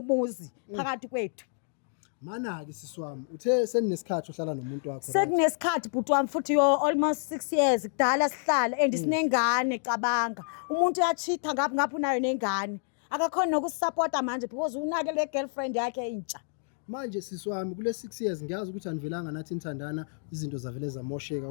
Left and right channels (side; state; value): right; silent; digital silence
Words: phakathi kwethu mana ke sisi wami uthe seninesikhathi uhlala nomuntu wakho sekunesikhathi bhuti wami futhi almost 6 years kudala sihlala and sinengane cabanga umuntu uyachitha ngaphi unayo nengane akakhona nokusupporta manje because unake le girlfriend yakhe intsha manje sisi wami kule 6 years ngiyazi ukuthi anivelanga nathi nithandana izinto zavele zamosheka